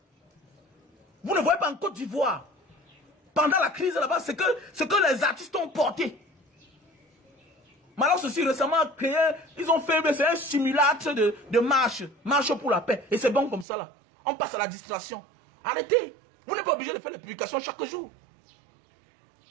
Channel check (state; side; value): drops out; left; at 13.7 s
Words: Vous ne voyez pas en Côte d'Ivoire. Pendant la crise là-bas, ce que les artistes ont porté. Maintenant, ceci récemment créé, ils ont fait un simulacre de marche pour la paix. Et c'est bon comme ça là. On passe à la distraction. Arrêtez. Vous n'êtes pas obligé de faire les publications chaque jour.